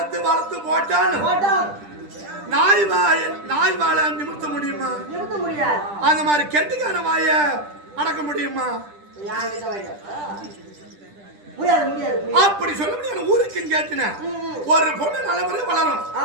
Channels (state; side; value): late; left; 10 ms